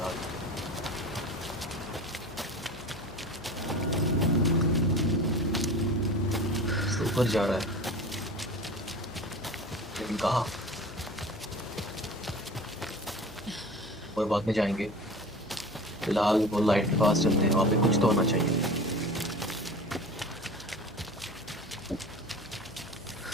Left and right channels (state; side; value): noise; left; hum, 21 dB below the sound